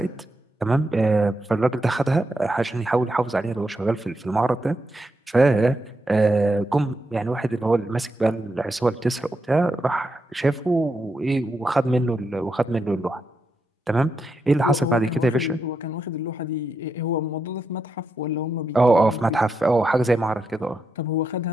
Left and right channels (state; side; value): normal; both; correlation 0.84